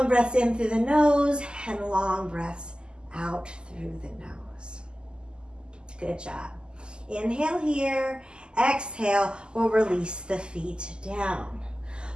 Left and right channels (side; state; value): left; late; 0.048 ms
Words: breaths in through the nose and long breaths out through the nose. Good job. Inhale here, exhale, we'll release the feet down.